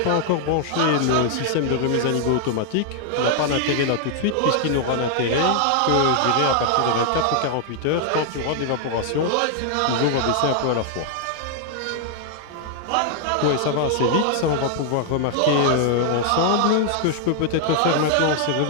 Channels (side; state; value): both; different; correlation 0.00